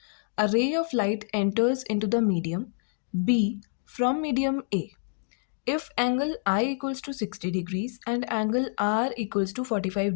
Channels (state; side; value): silent; right; digital silence